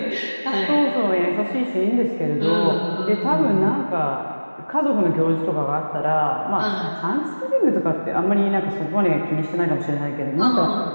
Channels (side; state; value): both; inverted; correlation -1.00